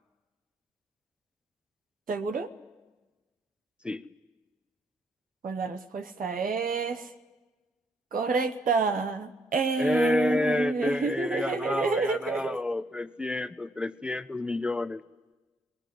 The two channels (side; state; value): both; normal; correlation 0.71